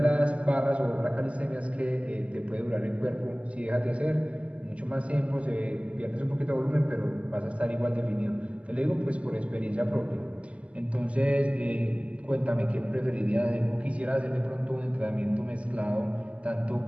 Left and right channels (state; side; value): late; left; 0.061 ms